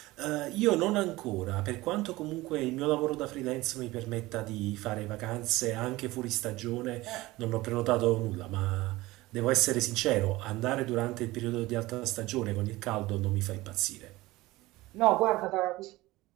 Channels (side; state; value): left; quieter; 19.2 dB